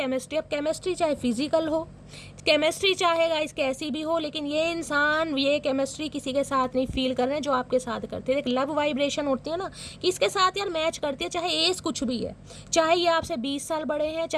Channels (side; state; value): both; identical; correlation 1.00